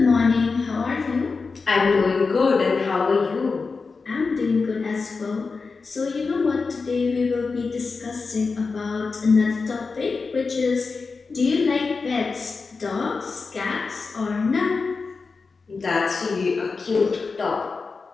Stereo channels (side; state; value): right; quieter; 4.5 dB